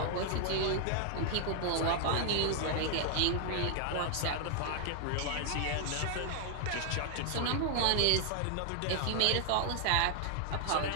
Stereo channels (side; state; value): both; different; correlation 0.00